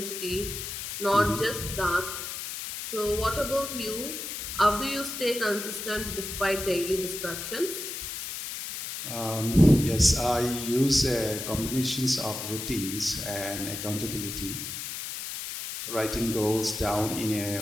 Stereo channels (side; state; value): left; noise; hiss, 6 dB below the sound